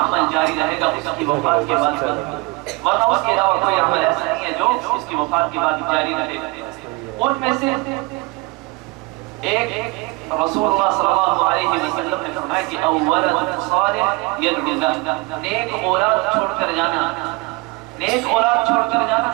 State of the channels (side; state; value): left; quieter; 25.4 dB